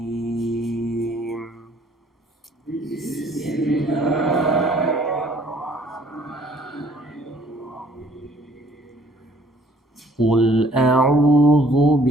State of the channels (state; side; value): normal; both; correlation 0.59